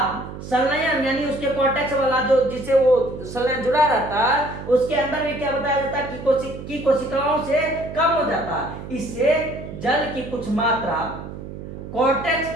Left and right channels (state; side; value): noise; right; hum, 11 dB below the sound